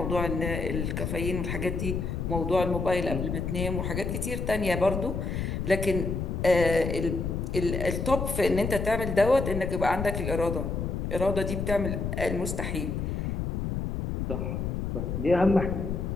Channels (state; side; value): noise; left; rumble, 2 dB below the sound